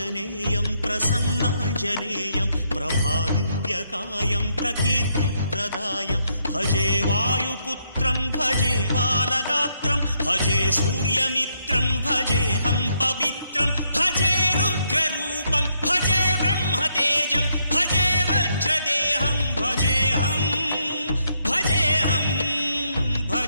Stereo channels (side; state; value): both; inverted; correlation -0.76